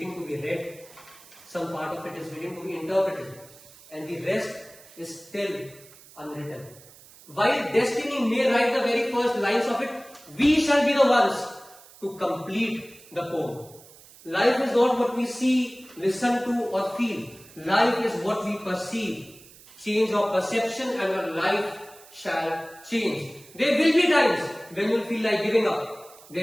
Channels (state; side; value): noise; right; hiss, 22 dB below the sound